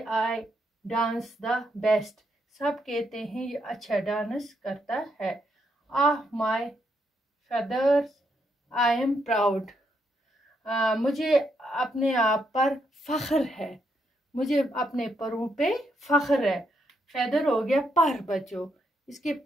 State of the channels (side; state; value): both; normal; correlation 0.78